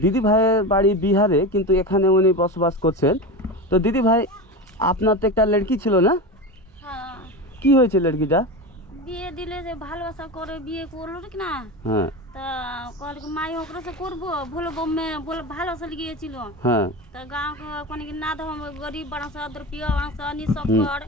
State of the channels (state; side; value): normal; both; correlation 0.23